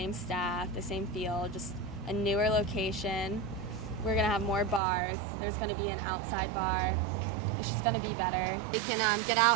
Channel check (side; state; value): left; drops out; at 4.8 s